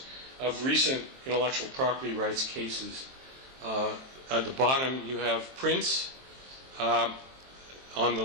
of recent intellectual property rights cases. At the bottom, you have Prince. On the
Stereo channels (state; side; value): late; left; 23 ms